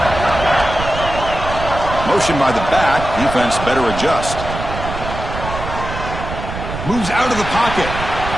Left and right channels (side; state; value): right; noise; rumble, 7 dB below the sound